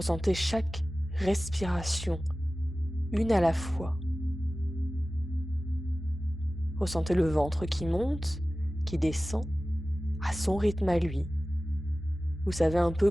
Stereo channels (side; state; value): both; normal; correlation 0.96